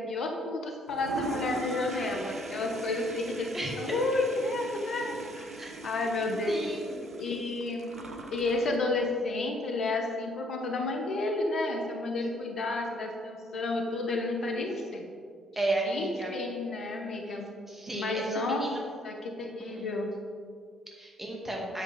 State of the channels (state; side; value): normal; both; correlation 0.64